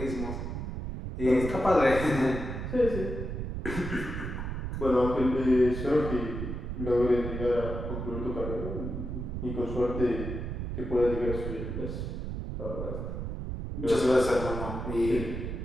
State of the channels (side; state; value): right; noise; rumble, 5 dB below the sound